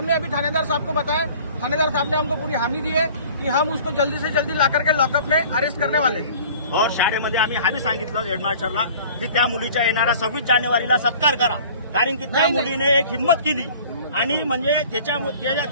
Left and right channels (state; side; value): inverted; both; correlation -0.47